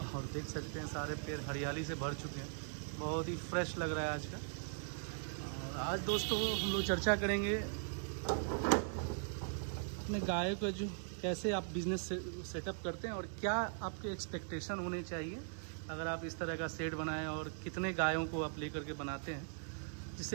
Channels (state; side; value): silent; left; digital silence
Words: और देख सकते हैं सारे पेड़ हरियाली से भर चुके हैं। बहुत ही फ्रेश लग रहा है आज का। और आज दोस्तों हम लोग चर्चा करेंगे अपने गाय को जो कैसे आप बिज़नेस सेटअप करते हैं और क्या आपके एक्सपेक्टेशन होने चाहिए अगर आप इस तरह का सेट बनाएं और कितने गायों को आप लेकर के बनाते हैं